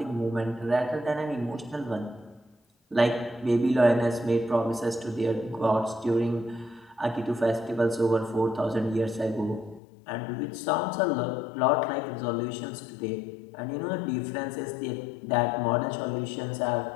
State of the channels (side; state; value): right; drops out; at 9.8 s